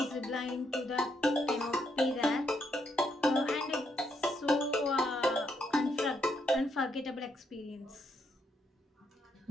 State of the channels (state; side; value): normal; both; correlation 0.76